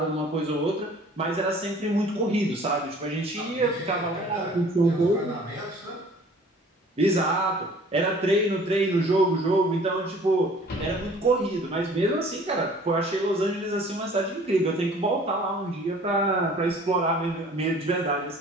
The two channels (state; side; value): normal; both; correlation 0.51